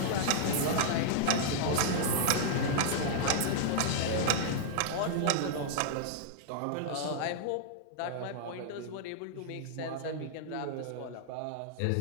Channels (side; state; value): both; different; correlation -0.01